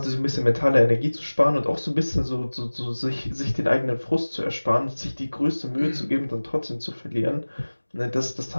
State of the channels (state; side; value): inverted; both; correlation -1.00